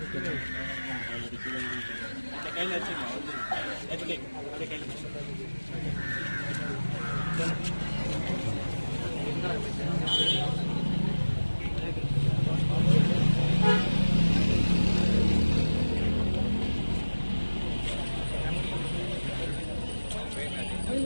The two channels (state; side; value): inverted; both; correlation -1.00